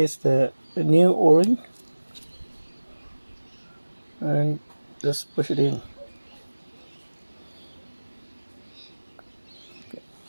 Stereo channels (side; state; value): both; inverted; correlation -1.00